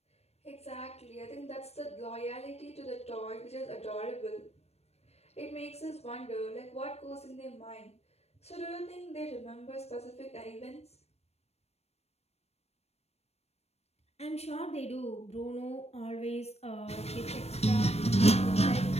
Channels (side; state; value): right; late; 0.31 ms